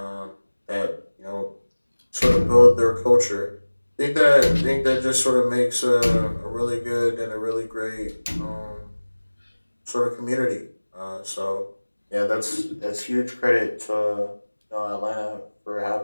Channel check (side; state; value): both; inverted; correlation -1.00